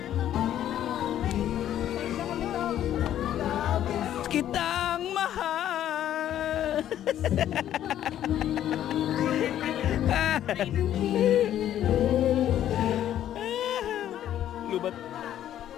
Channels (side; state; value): right; quieter; 11.4 dB